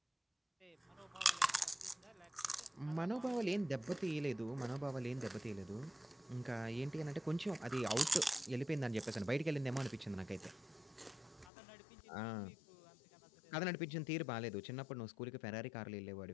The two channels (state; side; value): drops out; right; at 11.5 s